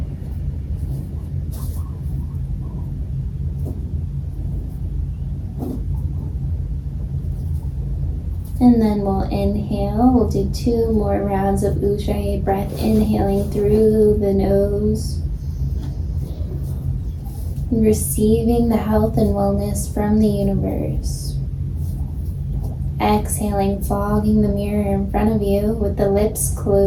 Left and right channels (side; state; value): both; identical; correlation 1.00